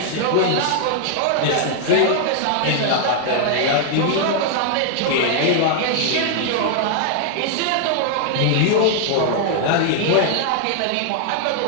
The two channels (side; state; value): both; different; correlation 0.00